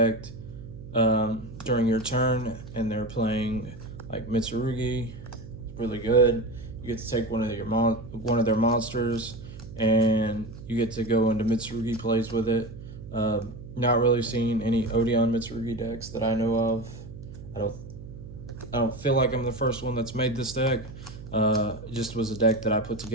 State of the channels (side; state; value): right; noise; hum, 14 dB below the sound